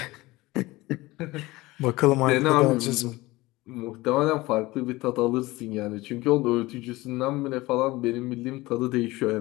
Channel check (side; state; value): right; quieter; 20.1 dB